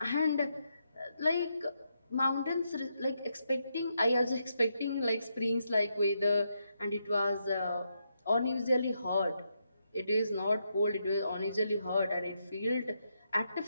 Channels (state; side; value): inverted; both; correlation -0.81